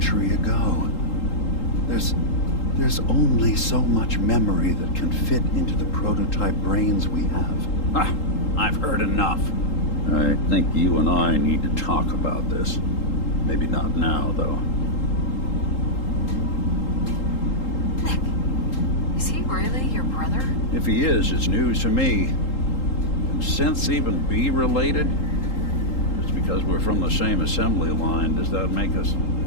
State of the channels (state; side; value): late; right; 3.8 ms